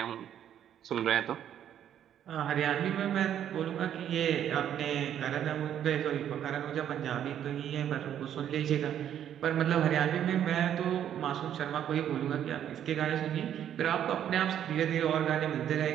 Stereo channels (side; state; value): left; quieter; 10.1 dB